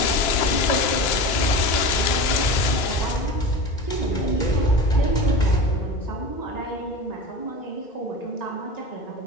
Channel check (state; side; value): late; right; 2.8 ms